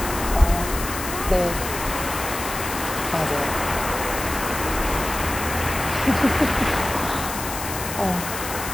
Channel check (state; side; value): noise; left; hiss, 7 dB below the sound